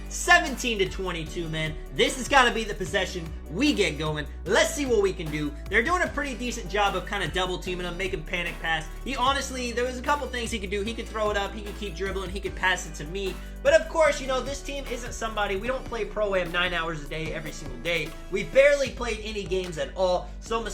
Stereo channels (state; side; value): identical; both; correlation 1.00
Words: 17 to 22, man. This has got to be the possession we get going. Let's see what we can do. They're doing a pretty decent job of kind of double teaming him, making panic pass. He honestly, there was a couple things he could do. He could throw it up. He could keep dribbling. He could pass it to me. But of course, you know, this team isn't somebody. We don't play Pro-Am 9 hours a day every single day. We barely played any games at all. So